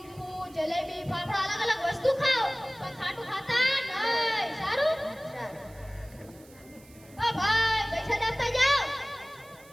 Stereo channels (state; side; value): noise; right; hiss, 25 dB below the sound